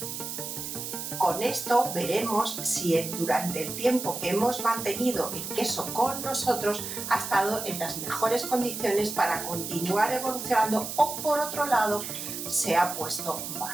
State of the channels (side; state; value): right; noise; hiss, 6 dB below the sound